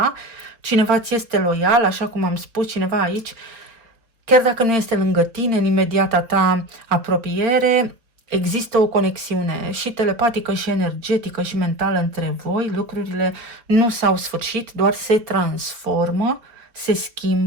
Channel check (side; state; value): left; late; 4.0 ms